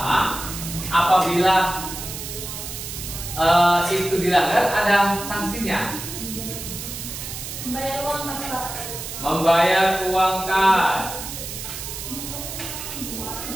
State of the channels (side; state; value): right; noise; hiss, 8 dB below the sound